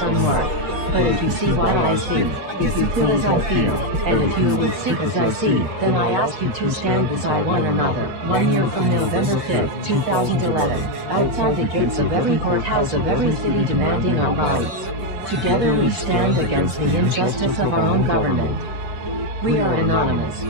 unmarked. But if you see what I see, if you feel as I feel, and if you will see as I see, then I ask you to stand beside one another. 1 year from November 5th, 2011, outside the gates of every courthouse of every city demanding our rights. Together we stand against the injustice of our own government. We are anonymous.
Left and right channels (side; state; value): left; late; 5.8 ms